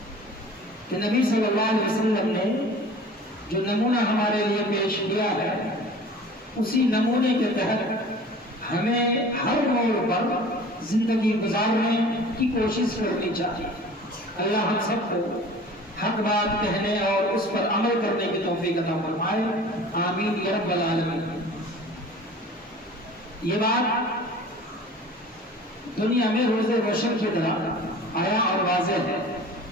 کہ نبی صلی اللہ علیہ وسلم نے جو نمونہ ہمارے لیے پیش کیا ہے اسی نمونے کے تحت ہمیں ہر موڑ پر زندگی گزارنے کی کوشش کرنی چاہیے۔ اللہ ہم سب کو حق بات کہنے اور اس پر عمل کرنے کی توفیق عطا فرمائے، آمین یا رب العالمین۔ یہ بات دنیا میں روز روشن کی طرح آیا اور واضح ہے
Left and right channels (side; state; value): both; normal; correlation 0.43